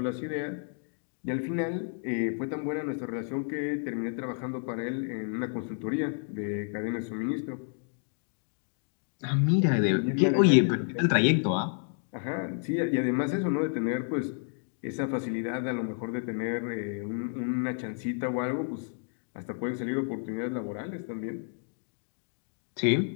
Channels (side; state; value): right; silent; 57 dB below the other